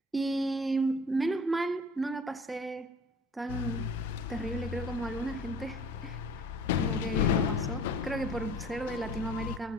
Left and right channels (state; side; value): normal; both; correlation 0.47